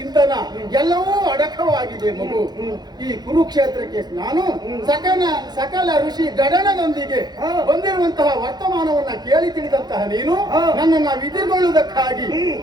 ಎಲ್ಲವೂ ಅಡಕವಾಗಿದೆ ಮಗು. ಈ ಕುರುಕ್ಷೇತ್ರಕ್ಕೆ ನಾನು ಸಕಲ ಋಷಿ ಗಡನದೊಂದಿಗೆ ಬಂದಿರುವಂತಹ ವರ್ತಮಾನವನ್ನ ಕೇಳಿ ತಿಳಿದಂತಹ ನೀನು ನನ್ನನ್ನ ವಿಧಿಗೊಳ್ಳುವುದಕ್ಕಾಗಿ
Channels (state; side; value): late; left; 0.20 ms